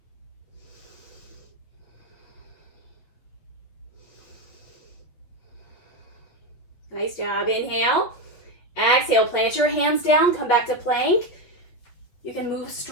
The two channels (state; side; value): late; right; 8.4 ms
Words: Nice job. Inhale. Exhale, plant your hands down, come back to plank. You can move